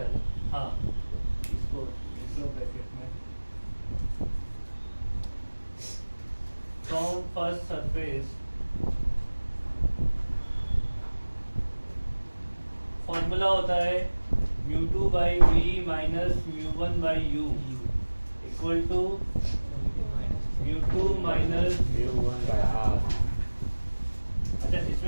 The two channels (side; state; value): both; inverted; correlation -1.00